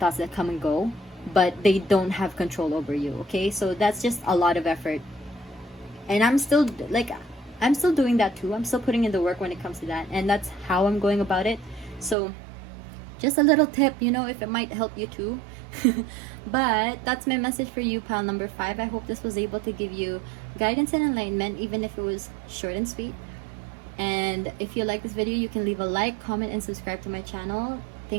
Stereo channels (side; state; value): left; drops out; at 12.2 s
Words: that come and go, but they don't have control over you. Okay, so that's just a lot of effort, and I'm still doing that too. I'm still putting in the work when it comes to that, and that's how I'm going about it. So just a little tip, you know, if it might help you too. But that's my message for you, pile number 5. I hope this was able to give you guidance and enlightenment, even if it was short and sweet. And if you like this video, you can leave a like, comment, and subscribe to my channel.